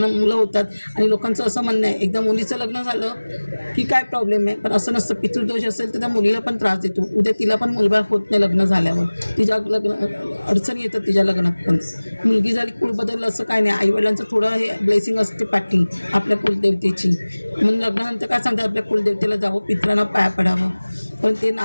मुलं होतात. आणि लोकांचं असं म्हणणं आहे एकदा मुलीचं लग्न झालं की काय प्रॉब्लेम आहे, पण असं नसतं. पितृदोष असेल तर त्या मुलीला पण त्रास देतो, उद्या तिला पण मुलबाळ होत नाही लग्न झाल्यावर, तिच्या अडचणी येतात तिच्या लग्नात पण. मुलगी झाली कुळ बदललं असं काय नाही, आईवडिलांचं थोडं हे ब्लेसिंग असते पाठी आपल्या कुलदेवतेची. म्हणून लग्नानंतर काय सांगतात आपल्या कुलदेवतेला जावं, पित्रांना पाया पडावं. पण ते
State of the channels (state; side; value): inverted; both; correlation -1.00